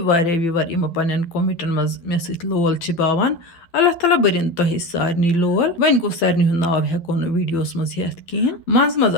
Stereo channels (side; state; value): right; late; 12 ms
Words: इमो पन कमेंटन मज मे सत लोल बावान अल्लाह ताला बरिन तुह सारे लोल वन गो सारे हूं नाव हेको वीडियोस मज हेत कहें मज